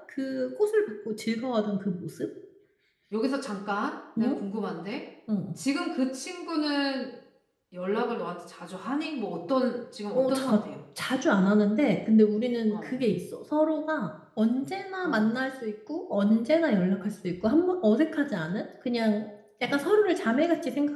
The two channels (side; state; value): both; identical; correlation 1.00